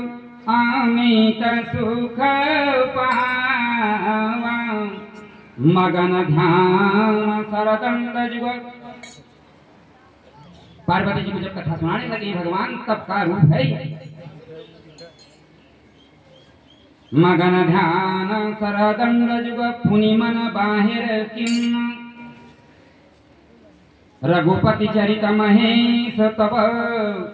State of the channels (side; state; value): both; identical; correlation 1.00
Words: अमित सुख पावा, मगन ध्यान सरदंड जुग। पार्वती जी को जब कथा सुनाने लगे भगवान, तब का रूप है मगन ध्यान सरदंड जुग, पुनि मन बाहिर किन्न, रघुपति चरित महेश तब